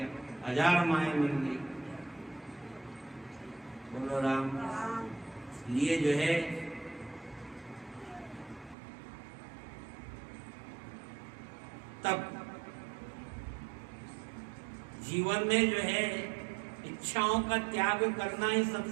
1000 माएँ मिल गई। बोलो राम। इसलिए जो है तब जीवन में जो है इच्छाओं का त्याग करना ही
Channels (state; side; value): drops out; left; at 8.8 s